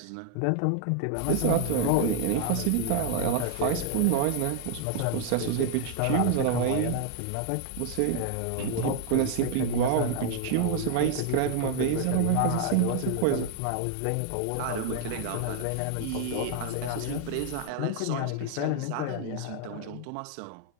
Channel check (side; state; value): both; different; correlation 0.00